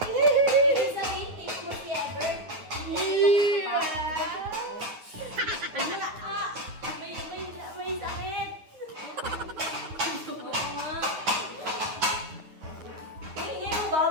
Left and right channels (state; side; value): late; left; 9.5 ms